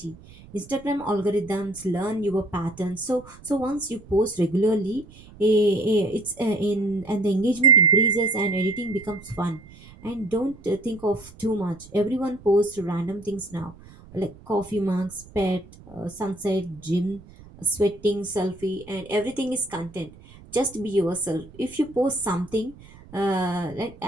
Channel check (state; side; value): noise; right; rumble, 21 dB below the sound